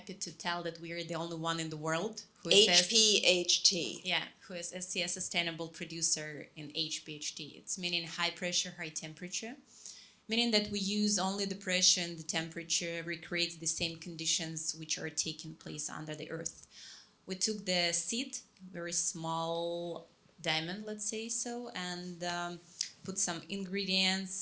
to tell that we are the only one in the world who is HPHT. who is SCS sustainable producer in HPHT. It's meaning high pressure, high temperature, meaning that we use only the pressure and the temperature recreates the same conditions which are taking place under the earth. We took the seed, very small diamond, let's say so, and put some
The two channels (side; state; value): both; identical; correlation 1.00